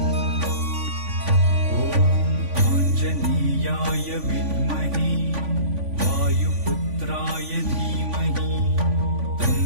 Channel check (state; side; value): late; left; 3.5 ms